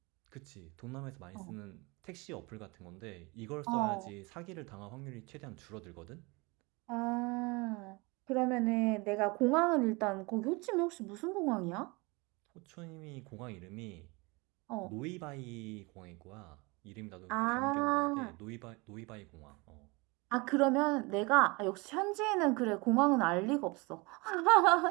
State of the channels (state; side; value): quieter; left; 26.5 dB